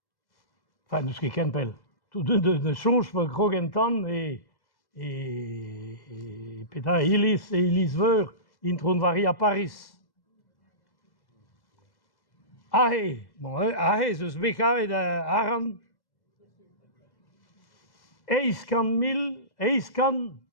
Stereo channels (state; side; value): late; right; 1.1 ms